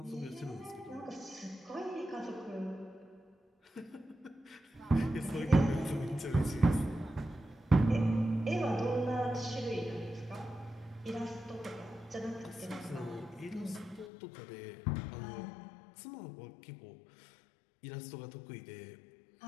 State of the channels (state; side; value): drops out; right; at 14.1 s